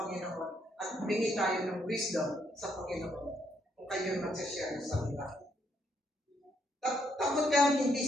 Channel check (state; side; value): normal; both; correlation 0.74